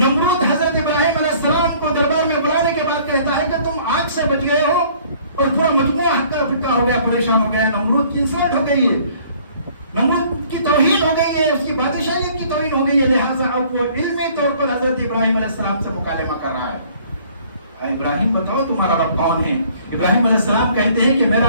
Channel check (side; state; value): both; inverted; correlation -0.57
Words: حضرت ابراہیم علیہ السلام کو دربار میں بلانے کے بعد کہتا ہے کہ تم آگ سے بچ گئے ہو، اور پورا مجموعہ ہکا پھکا ہو گیا، پریشان ہو گیا. نمرود کی انسلٹ ہو گئی ہے، نمرود کی توہین ہو گئی ہے، اس کی بادشاہیت کی توہین ہو گئی ہے. لہٰذا اب وہ علمی طور پر حضرت ابراہیم علیہ السلام سے مکالمہ کر رہا ہے. ابراہیم بتاؤ تمہارا رب کون ہے. ابراہیم علیہ السلام کہتے ہیں کہ